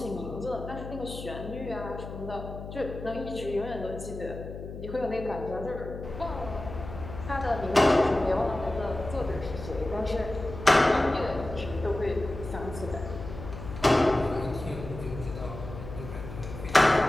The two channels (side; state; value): left; noise; hum, 10 dB below the sound